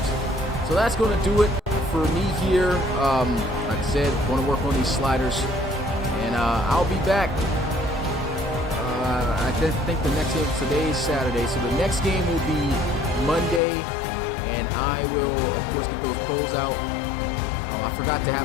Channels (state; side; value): drops out; right; at 13.6 s